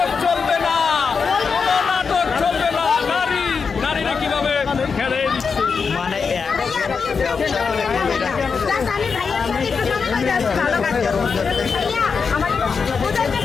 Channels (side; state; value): right; quieter; 5.5 dB